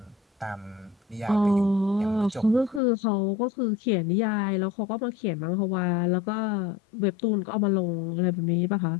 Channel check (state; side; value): drops out; right; at 2.8 s